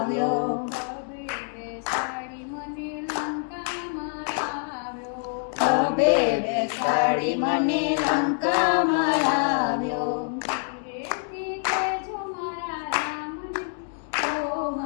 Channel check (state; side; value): silent; right; 61 dB below the other